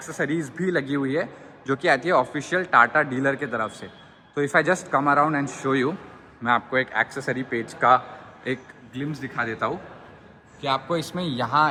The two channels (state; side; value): identical; both; correlation 1.00